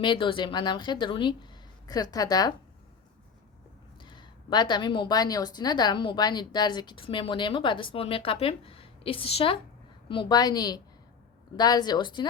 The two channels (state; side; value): quieter; right; 6.0 dB